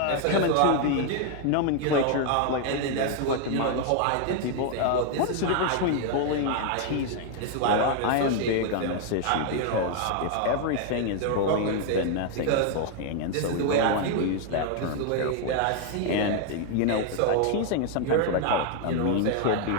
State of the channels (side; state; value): both; different; correlation 0.00